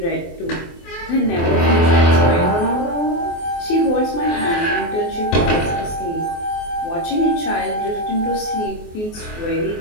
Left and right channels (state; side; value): late; right; 24 ms